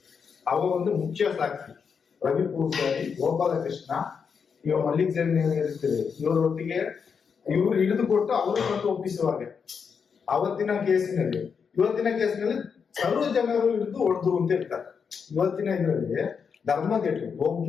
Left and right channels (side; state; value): right; quieter; 6.2 dB